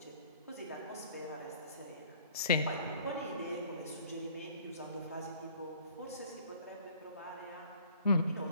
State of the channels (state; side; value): inverted; both; correlation -0.54